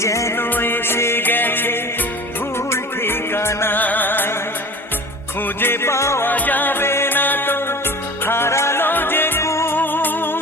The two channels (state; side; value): normal; both; correlation 0.39